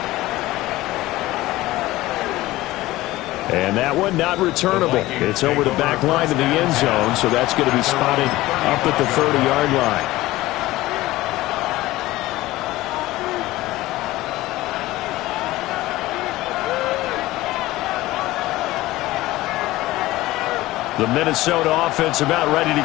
And that one not returnable. It's over the back line to the end zone, so that's going to be spotted up at the 30-yard line. The Minnesota offense about ready to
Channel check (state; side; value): quieter; right; 17.6 dB